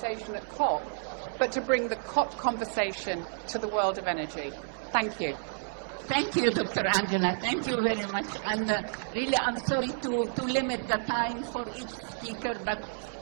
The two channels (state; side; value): silent; left; digital silence